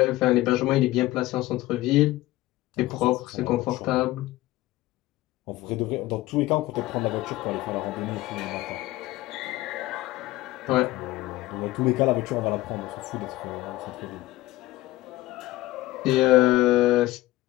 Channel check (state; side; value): quieter; right; 17.4 dB